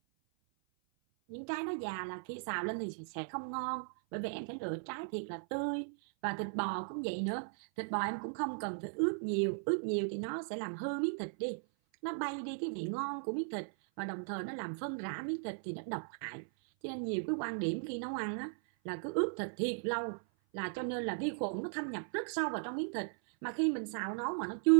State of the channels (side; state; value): left; silent; 53 dB below the other